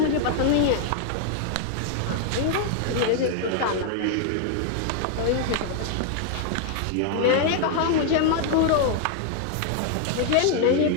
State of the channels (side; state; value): both; different; correlation 0.00